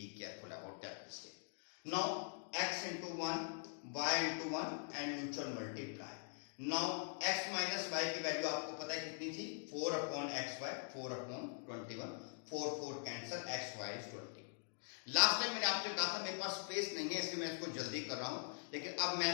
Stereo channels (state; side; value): silent; right; digital silence